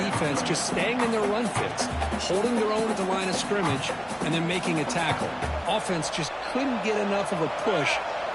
just staying in their run fits, holding their own at the line of scrimmage, and then making a tackle. Offense just couldn't get enough of a push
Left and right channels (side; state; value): both; identical; correlation 1.00